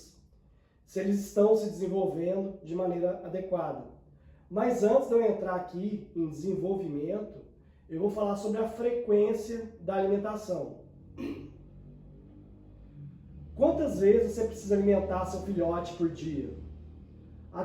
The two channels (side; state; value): both; identical; correlation 1.00